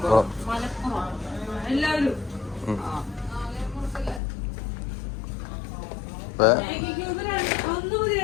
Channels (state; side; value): drops out; right; at 4.2 s